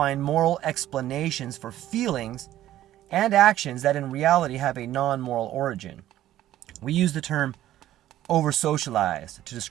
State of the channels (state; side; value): quieter; left; 13.4 dB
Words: moral explanations for feelings and actions that in reality have a non-moral origin. We use the term over-socialized to